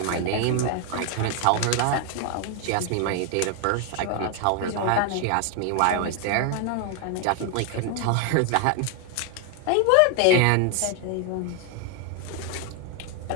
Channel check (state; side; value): different; both; correlation 0.00